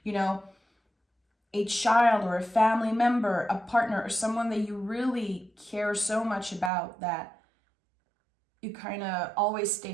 you know, a child or a family member, a partner, or someone that you really care so much about that you kind of always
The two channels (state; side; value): drops out; left; at 6.7 s